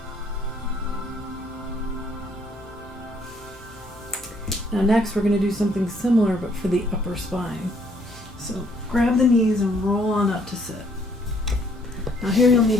Now next we're going to do something similar but for the upper spine. So grab the knees and roll on up to sit. Now here you'll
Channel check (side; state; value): both; normal; correlation 0.66